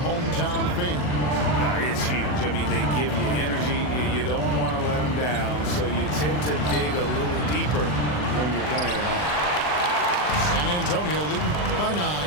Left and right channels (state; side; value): late; right; 40 ms